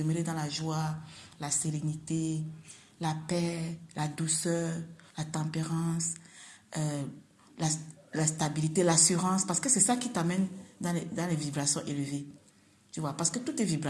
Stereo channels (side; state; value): both; identical; correlation 1.00